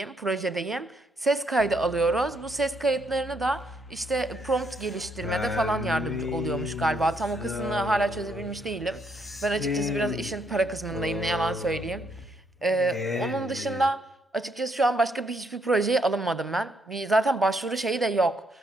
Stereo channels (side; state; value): both; normal; correlation 0.73